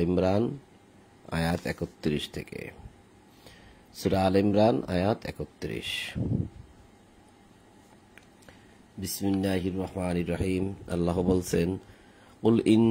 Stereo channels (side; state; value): both; identical; correlation 1.00